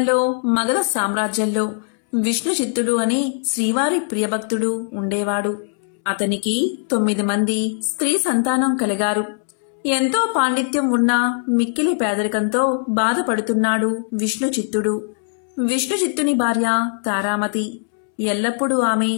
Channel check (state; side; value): silent; right; 65 dB below the other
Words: మగధ సామ్రాజ్యంలో విష్ణు చిత్తుడు అని శ్రీవారి ప్రియభక్తుడు ఉండేవాడు. అతనికి 9 మంది స్త్రీ సంతానం కలిగారు. ఎంతో పాండిత్యం ఉన్న మిక్కిలి పేదరికంతో బాధపడుతున్నాడు విష్ణు చిత్తుడు. విష్ణు చిత్తుని భార్య తారామతి. ఎల్లప్పుడూ ఆమె